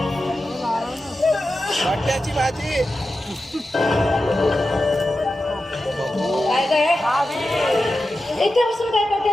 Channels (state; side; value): normal; both; correlation 0.92